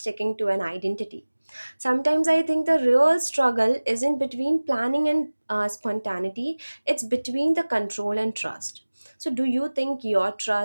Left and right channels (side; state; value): both; inverted; correlation -1.00